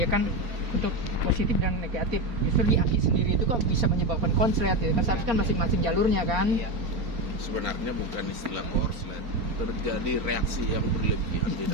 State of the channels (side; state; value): left; late; 4.3 ms